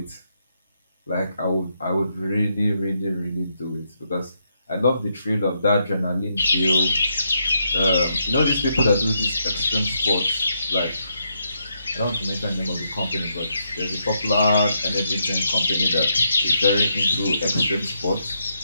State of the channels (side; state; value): both; inverted; correlation -0.79